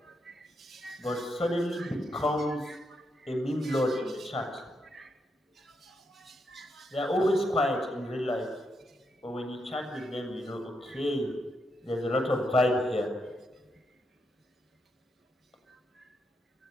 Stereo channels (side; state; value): both; normal; correlation 0.81